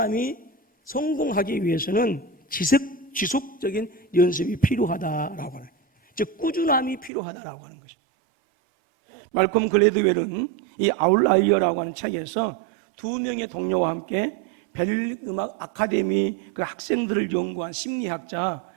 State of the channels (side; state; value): left; drops out; at 7.1 s